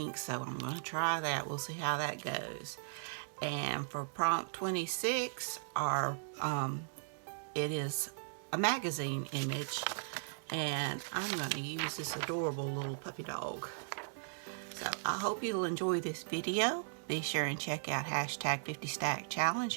so I'm going to try that. We'll see how that goes. And for prompt 26, it is a magazine image, and I'm going to use this adorable little puppy dog. So I hope you'll enjoy this video. Be sure and check out hashtag 50 Stack Challenge,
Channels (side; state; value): left; silent; digital silence